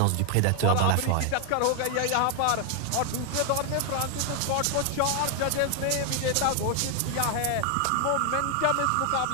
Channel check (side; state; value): both; different; correlation 0.00